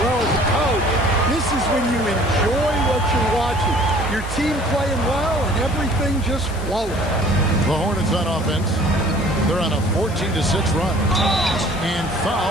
Well, as a coach, this is when you enjoy what you're watching. Your team playing well and everything just flowing. The Hornets on offense. They're on a 14-6 run. And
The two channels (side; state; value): left; noise; hiss, 17 dB below the sound